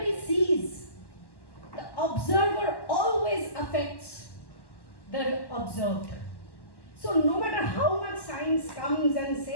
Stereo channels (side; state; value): right; late; 1.1 ms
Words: sees, the observer always affects the observed. So no matter how much science comes and